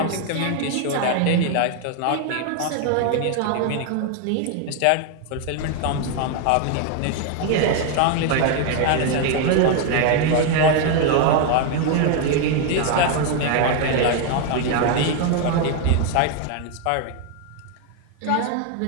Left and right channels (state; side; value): different; both; correlation 0.01